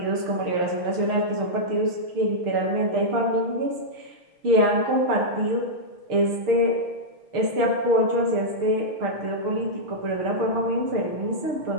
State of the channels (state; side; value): late; left; 6.5 ms